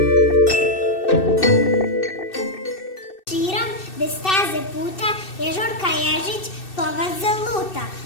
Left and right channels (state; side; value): late; right; 2.6 ms